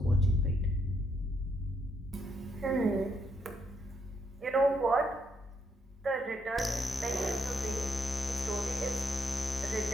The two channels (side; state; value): both; normal; correlation 0.75